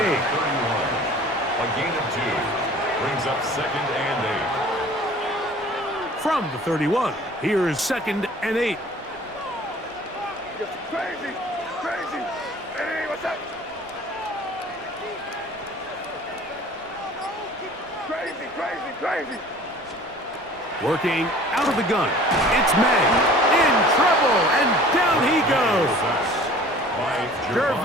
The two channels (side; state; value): both; normal; correlation 0.47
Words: A gain of 2 brings up 2nd and 8. From the 31, here's 2nd and 8. Crazy! Hey, what's up? Crazy! Working out of the gun, it's May. In trouble, and down he goes.